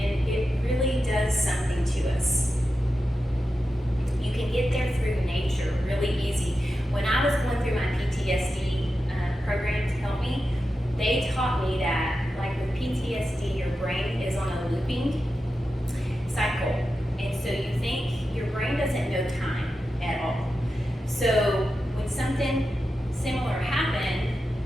it really does something to us. You can get there through nature really easy. When I was going through my PTSD program to help me, they taught me that, like with PTSD, your brain is on a looping cycle. And so you think your brain doesn't know time at all. So when something similar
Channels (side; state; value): both; normal; correlation 0.91